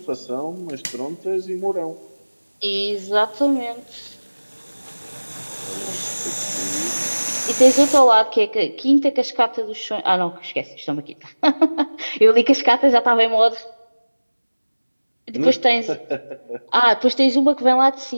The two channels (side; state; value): both; inverted; correlation -1.00